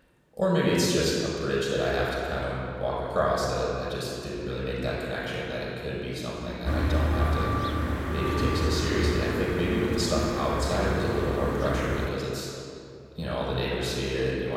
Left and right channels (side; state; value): both; identical; correlation 1.00